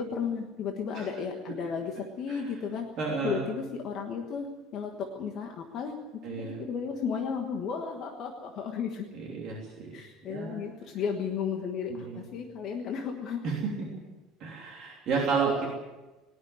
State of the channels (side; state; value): both; normal; correlation 0.45